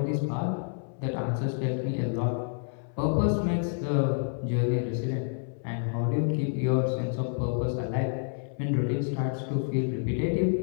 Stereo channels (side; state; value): right; silent; 59 dB below the other